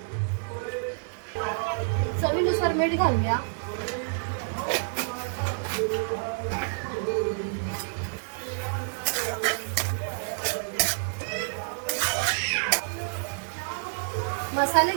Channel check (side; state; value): left; silent; digital silence